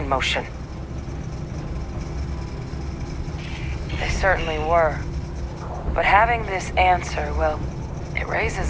motion. They certainly were. But having this answer, well, it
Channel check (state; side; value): identical; both; correlation 1.00